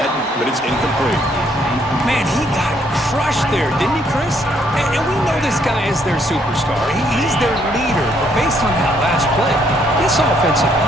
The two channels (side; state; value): both; normal; correlation 0.69